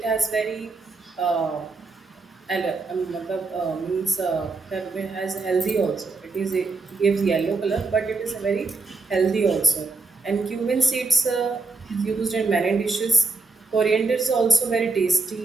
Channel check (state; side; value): quieter; left; 3.9 dB